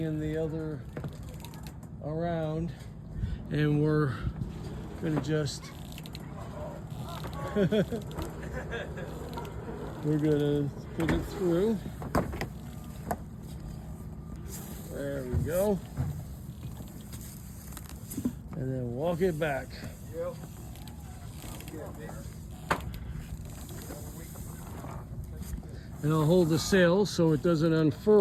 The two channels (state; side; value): identical; both; correlation 1.00